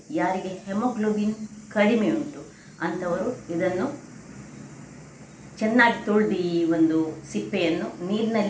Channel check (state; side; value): identical; both; correlation 1.00